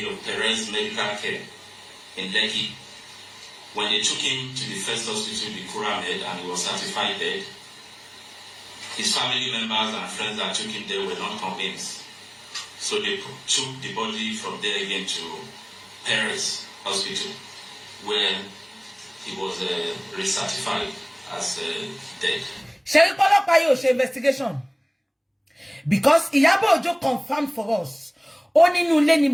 of Perez Medical Care in Lekki. When they took him to the first hospital, the Kuramed, and he was certified dead, his family members and friends that took him there were not convinced. So they took the body from there again to Perez Hospital, where he was recertified as dead. Sherry Polopa yo she investigation. Because Iyabo Ojo confirmed for us. Oni nu le ni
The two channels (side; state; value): both; identical; correlation 1.00